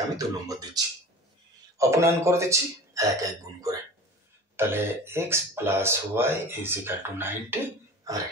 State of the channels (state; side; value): normal; both; correlation 0.37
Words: আমি 2 নম্বর দিচ্ছি। অপনয়ন করে দিচ্ছি 1 1 গুণ করে। তাহলে x plus y is equal to 90, আর